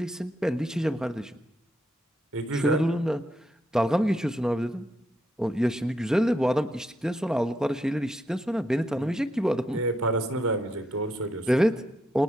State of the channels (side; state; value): both; normal; correlation 0.79